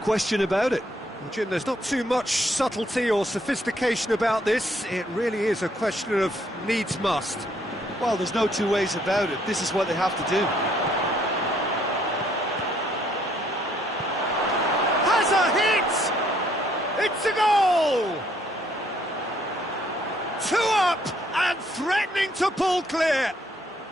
about it. Well, Jim, there's not too much subtlety or sophistication about this. It really is a question of needs must. Well, there's no two ways about it. This is what they have to do. Has a hit! It's a goal! 2 up and threatening to pull clear.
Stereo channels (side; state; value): both; normal; correlation 0.67